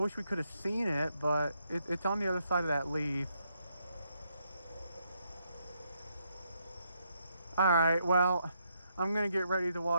we could have seen it, but it's on the other side of that leaf. Alright, well, I'm gonna get ready to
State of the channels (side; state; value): both; inverted; correlation -0.77